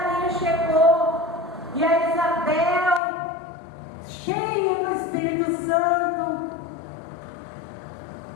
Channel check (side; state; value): right; drops out; at 3.0 s